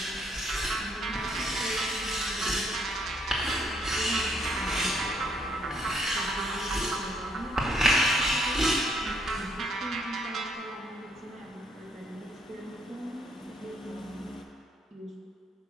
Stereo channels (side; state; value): both; normal; correlation 0.69